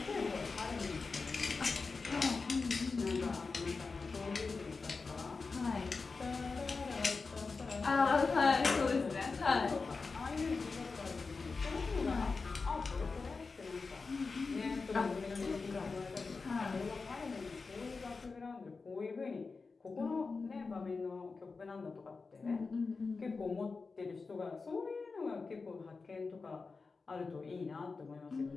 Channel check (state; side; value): quieter; right; 4.3 dB